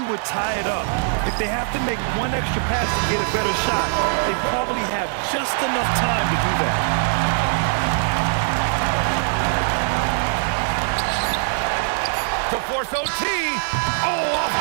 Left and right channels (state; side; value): silent; left; digital silence